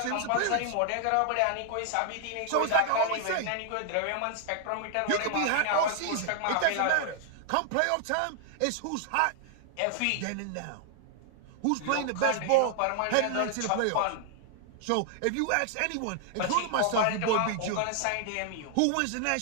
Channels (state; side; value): different; both; correlation 0.00